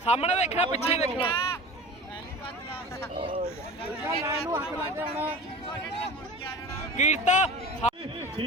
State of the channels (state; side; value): normal; both; correlation 0.36